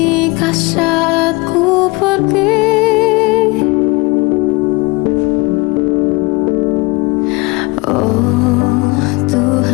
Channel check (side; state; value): right; quieter; 25.4 dB